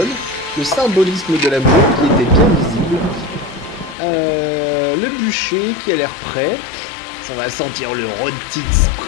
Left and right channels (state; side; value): drops out; right; at 4.0 s